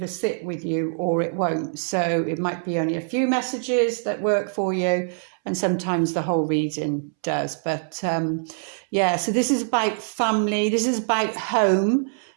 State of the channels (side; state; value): left; silent; 63 dB below the other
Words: sit with you or it won't. So it might be only a few messages that work for you, and sometimes the whole reading does. But yeah, so this is about family, this is about home.